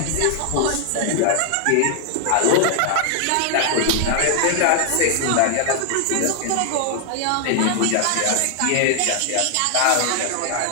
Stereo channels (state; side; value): different; both; correlation 0.00